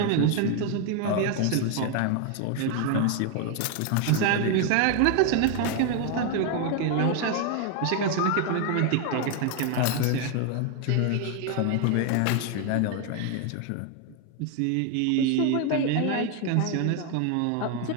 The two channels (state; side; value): different; both; correlation 0.01